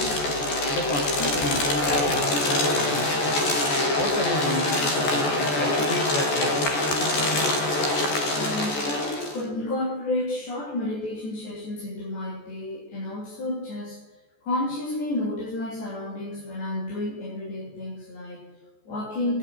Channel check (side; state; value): right; late; 14 ms